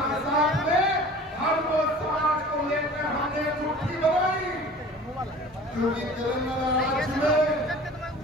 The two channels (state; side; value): normal; both; correlation 0.43